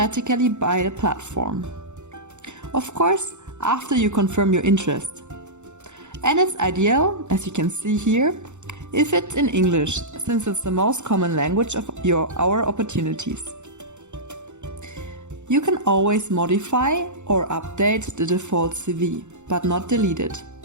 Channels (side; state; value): left; late; 0.84 ms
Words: by the platform. Of course, after you confirm your interest. And it's ideal, as you can see here, if it's in English, since it's the most common language of our opportunities. You can always modify or update the default CV, but not delete it.